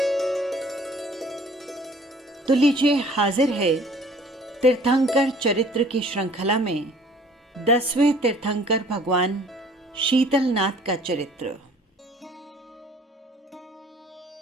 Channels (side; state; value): both; normal; correlation 0.53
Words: तो लीजिए, हाजिर है तीर्थंकर चरित्र की श्रृंखला में 10वें तीर्थंकर भगवान शीतलनाथ का चरित्र।